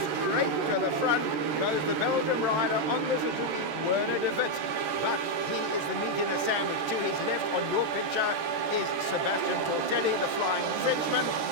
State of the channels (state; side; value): late; left; 13 ms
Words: straight to the front goes the Belgium rider on the Suzuki, Werner de Wit. But he is the meat in the sandwich. To his left on your picture is Sebastian Tortelli, the flying Frenchman,